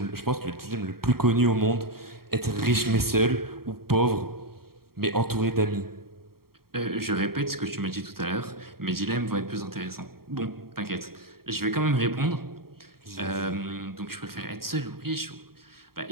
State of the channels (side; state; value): left; late; 0.94 ms